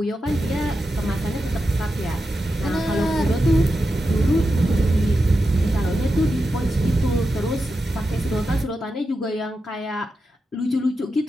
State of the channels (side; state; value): both; normal; correlation 0.89